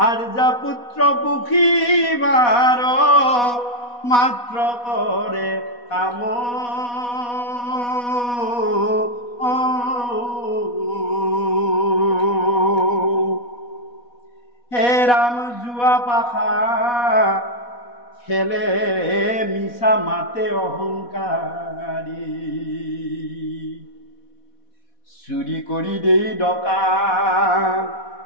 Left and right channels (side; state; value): right; late; 4.1 ms